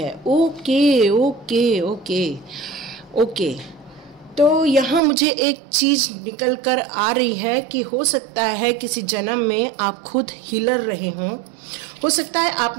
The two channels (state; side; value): drops out; left; at 5.0 s